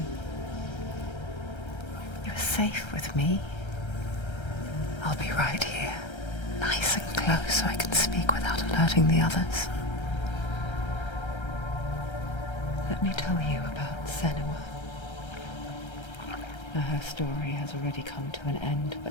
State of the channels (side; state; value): right; late; 1.3 ms